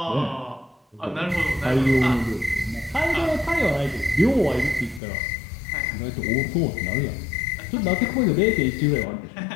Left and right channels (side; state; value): right; drops out; at 5.0 s